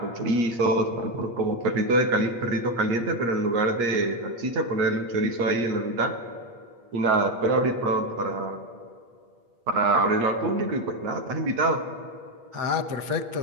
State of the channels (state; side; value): late; left; 8.5 ms